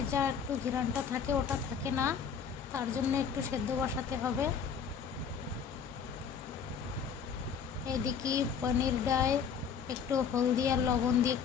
যা একটু ঘ্রাণটা থাকে ওটা থাকে না, তার জন্য একটু সেদ্ধ বসাতে হবে। এদিকে পনিরটায় একটু হলদি আর লবণ দিয়ে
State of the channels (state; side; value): quieter; right; 6.9 dB